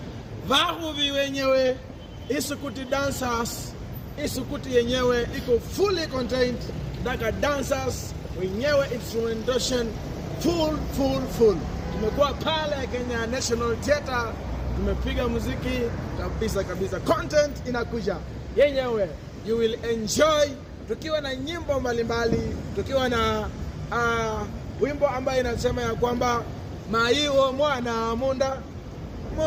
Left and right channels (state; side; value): identical; both; correlation 1.00